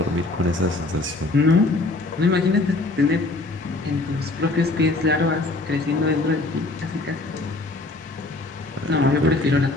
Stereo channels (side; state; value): right; quieter; 3.1 dB